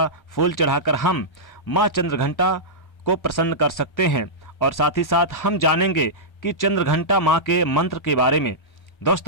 फूल चढ़ाकर हम माँ चंद्रघंटा को प्रसन्न कर सकते हैं। और साथ ही साथ हम जानेंगे कि चंद्रघंटा माँ के मंत्र के बारे में।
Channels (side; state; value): right; late; 1.3 ms